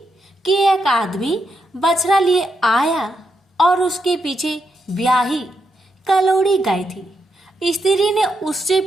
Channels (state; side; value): normal; both; correlation 0.82